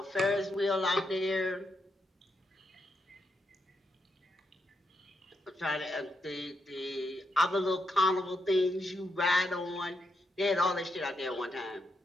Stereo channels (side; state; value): both; normal; correlation 0.81